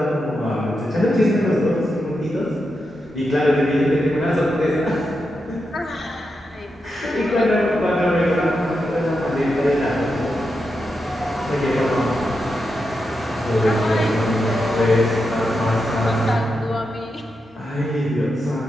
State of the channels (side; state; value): both; normal; correlation 0.87